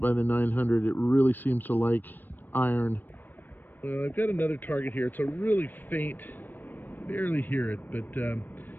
the 900. It really seems to like iron. Well, I've got another target here. It's a really faint, barely hear it, but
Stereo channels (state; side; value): late; right; 0.091 ms